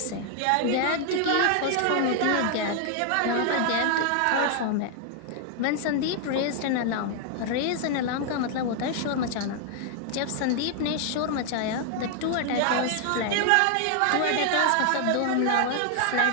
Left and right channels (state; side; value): different; both; correlation 0.00